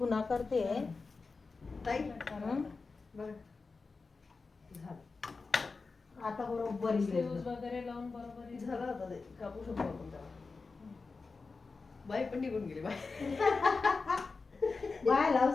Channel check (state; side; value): quieter; right; 4.2 dB